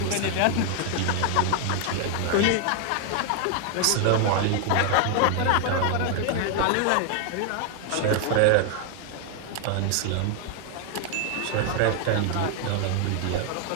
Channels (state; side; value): different; both; correlation 0.00